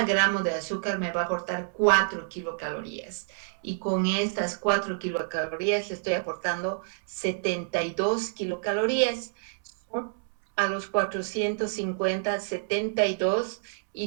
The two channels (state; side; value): silent; left; 59 dB below the other